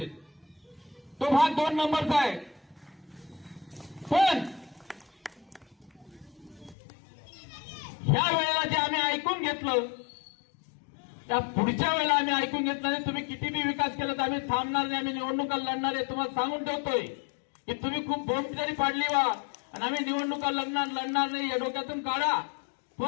तो भाग 2 नंबरचा आहे. पण ह्या वेळेला जे आम्ही ऐकून घेतलं त्या पुढच्या वेळेला आम्ही ऐकून घेतलं नाही. तुम्ही किती बी विकास केला तर आम्ही थांबणार नाही, आम्ही निवडणुका लढणार आहे. तुम्हाला सांगून ठेवतोय की तुम्ही खूप बोंब जरी पाडली वा आणि आम्ही निवडणुका लढणार नाही या डोक्यातून काढा.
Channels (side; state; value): right; drops out; at 6.8 s